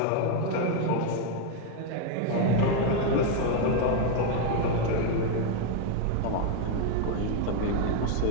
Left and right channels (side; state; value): both; different; correlation 0.01